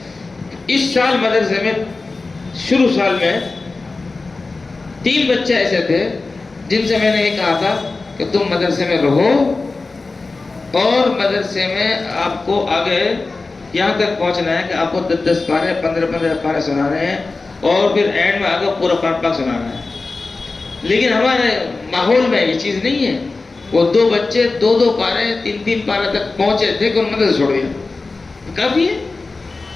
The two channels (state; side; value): quieter; right; 3.7 dB